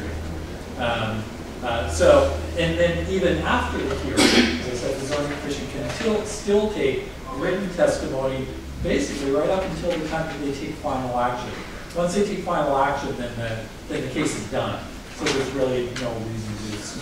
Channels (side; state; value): both; identical; correlation 1.00